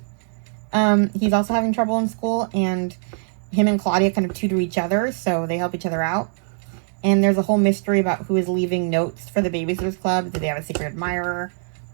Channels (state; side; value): silent; left; 64 dB below the other